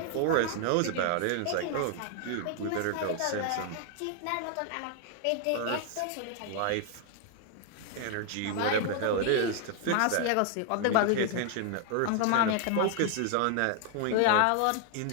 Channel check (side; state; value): both; different; correlation 0.00